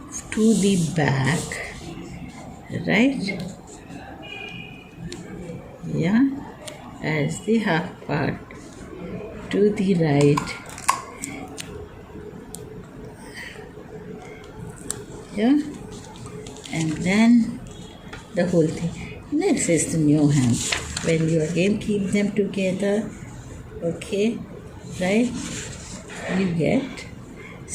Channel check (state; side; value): identical; both; correlation 1.00